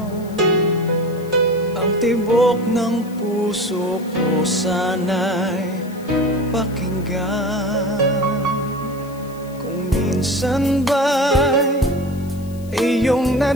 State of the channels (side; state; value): left; noise; hiss, 23 dB below the sound